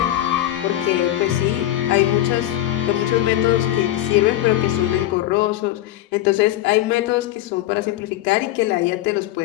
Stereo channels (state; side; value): quieter; right; 13.9 dB